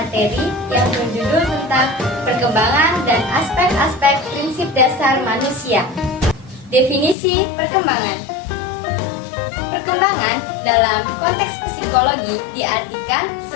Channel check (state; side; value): drops out; right; at 7.2 s